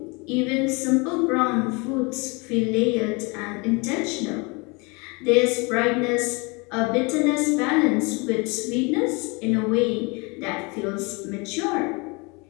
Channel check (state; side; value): quieter; right; 28.7 dB